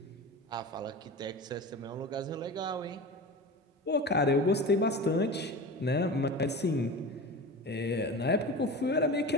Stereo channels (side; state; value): both; normal; correlation 0.31